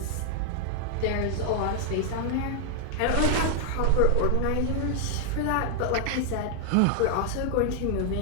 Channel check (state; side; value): different; both; correlation 0.00